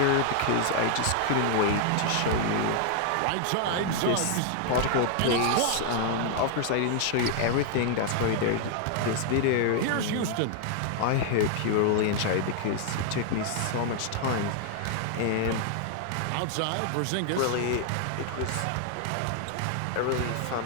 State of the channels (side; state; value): both; different; correlation 0.00